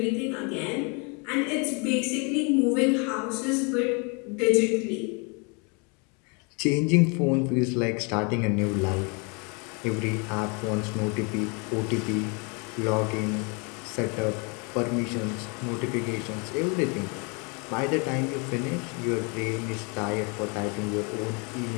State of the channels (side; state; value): right; quieter; 32.7 dB